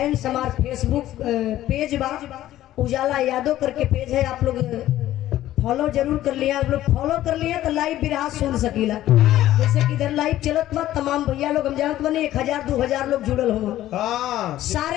हमार फेसबुक पेज बा उजाला यादव करके पेज है, आप लोग फॉलो जरूर कर लिया। आप लोग फॉलो कर लिया तो लाइव बिरहा सुन सकीला। जैसे कि इधर लाइव चलत बा, तमाम भैया लोग हम जानत बने 1000-2000 लोग जुड़ल हो,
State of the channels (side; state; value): right; quieter; 13.8 dB